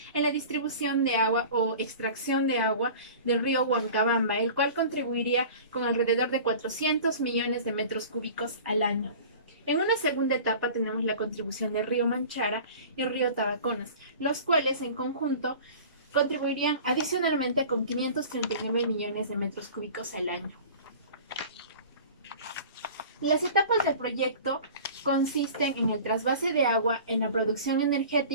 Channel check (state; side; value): inverted; both; correlation -0.41